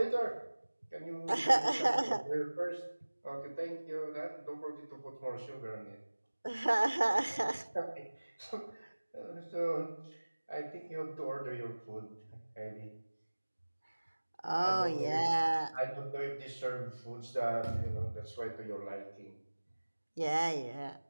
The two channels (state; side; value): inverted; both; correlation -1.00